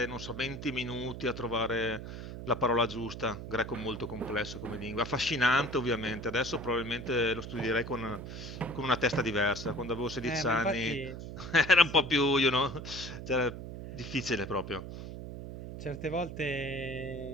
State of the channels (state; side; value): noise; right; hum, 9 dB below the sound